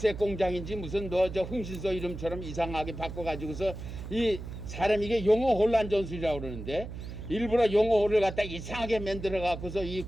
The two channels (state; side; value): noise; right; hum, 9 dB below the sound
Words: 공장인지 무슨 흥신소 이름처럼 이상하게 바꿔가지고서 이 사람 이게 용어 혼란 전술이라고 그러는데 일부러 용어를 갖다 이상하게 만들어 갖고서 이